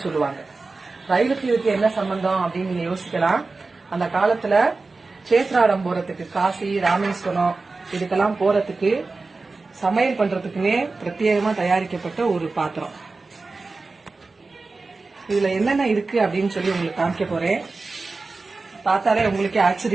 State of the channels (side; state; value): left; quieter; 3.8 dB